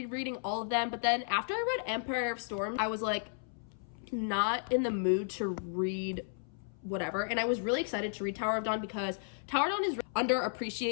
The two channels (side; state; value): right; silent; 55 dB below the other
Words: all of them, but then after I read Empire of Storm, I was like not in the mood to read whatever, and I was really excited to read Tower of Dawn because Tower of Dawn is